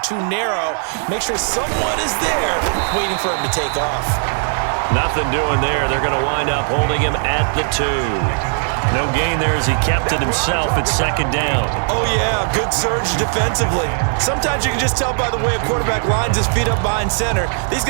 too narrow. Make sure someone is there waiting for him to take off. Nothing doing there. They're going to wind up holding him at the 2. No gain there as he kept it himself at 2nd down. Oh, yeah, good surge defensively. Sometimes you can just tell by the way a quarterback lines his feet up behind center. He's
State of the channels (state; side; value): silent; left; 58 dB below the other